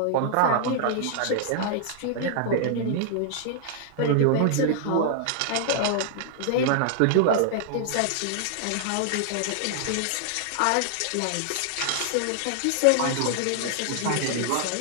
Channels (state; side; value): different; both; correlation -0.01